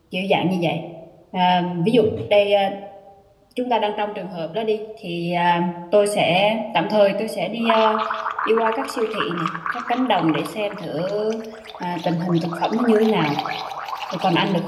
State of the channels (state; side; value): identical; both; correlation 1.00